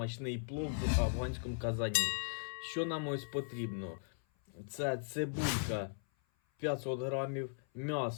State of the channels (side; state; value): right; silent; 53 dB below the other